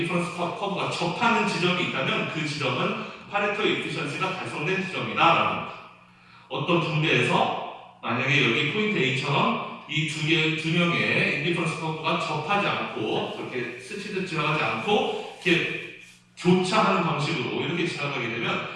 커브가 접하는 지점이 있다면 그 지점은 파레토 이피션시가 달성된 지점이다라는 거예요. 어떤 분배에서 만약에 여기 포인트 A처럼 이 두 명의 인디퍼런스 커브가 접하지 않고 그렇게 스치듯 지나가지 않고 이렇게 교차하는 방식으로 이렇게 지나가게 되면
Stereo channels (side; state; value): both; identical; correlation 1.00